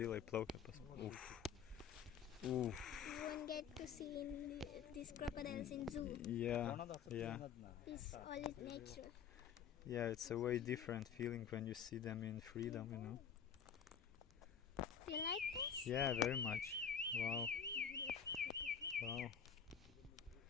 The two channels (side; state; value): right; quieter; 7.4 dB